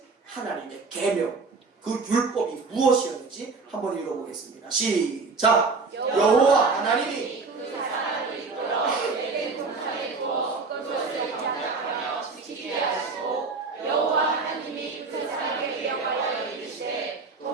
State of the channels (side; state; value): left; quieter; 4.3 dB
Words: 하나님의 계명, 그 율법이 무엇이었는지 한번 읽어보겠습니다. 시작! 여호와 하나님이